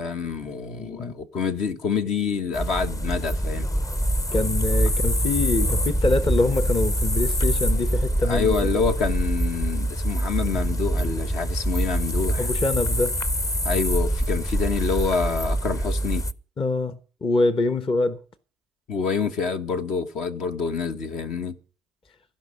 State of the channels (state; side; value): normal; both; correlation 0.69